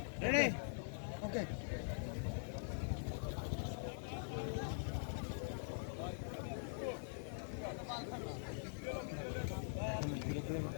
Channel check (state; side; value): silent; right; digital silence